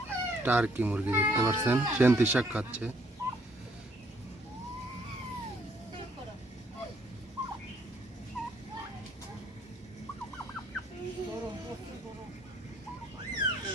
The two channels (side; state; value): both; normal; correlation 0.66